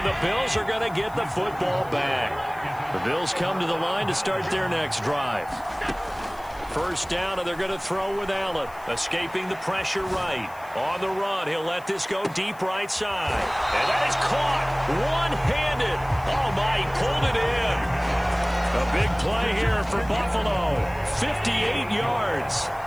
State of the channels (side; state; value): left; noise; hiss, 24 dB below the sound